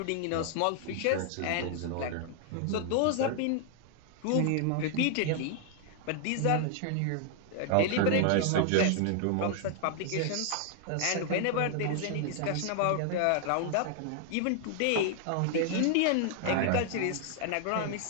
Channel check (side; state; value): both; different; correlation 0.00